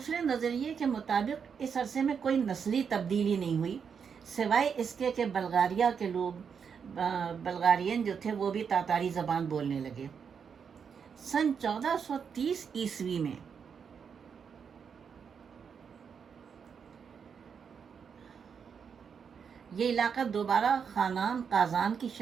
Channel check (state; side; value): quieter; left; 6.7 dB